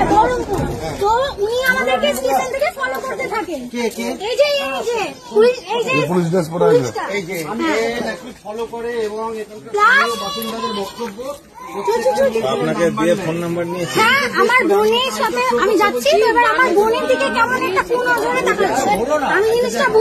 বহরমপুর। তো উনি আমাদেরকে স্টেশন থেকে ফলো করতে থাকেন। এই যে ফলো করে এবং বাসিন্দাদের বক্তব্য আপনাকে দিয়ে ফোন নাম্বার নিয়েছি। হ্যাঁ, আমার বোনের সাথে আমি যাচ্ছি, এবার আমার বোনের দিকে কেমন একটা কোন ধরে তাকাচ্ছে। আমি জিনিসটা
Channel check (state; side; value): identical; both; correlation 1.00